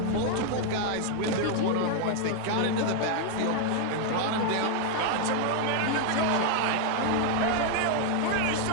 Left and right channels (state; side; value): different; both; correlation 0.00